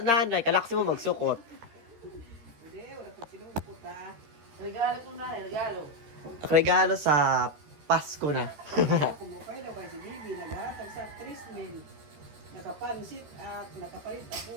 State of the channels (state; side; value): late; left; 13 ms